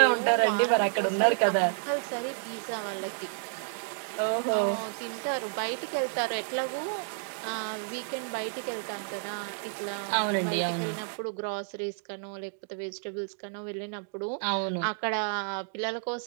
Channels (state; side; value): silent; left; digital silence